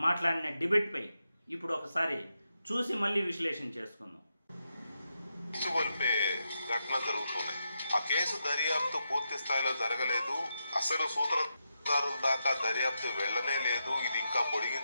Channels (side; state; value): both; inverted; correlation -0.85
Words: డిబేట్పై ఇప్పుడు ఒకసారి చూసి మళ్ళీ విశ్లేషణ చేసుకుందాం. ఘటన జరుగుతున్నాయి. ఆ కేసు దర్యాప్తు పూర్తి స్థాయిలో జరగలేదు. అసలు సూత్రధారుల దాకా దర్యాప్తు వెళ్లనే లేదు. ఇది ఇంకా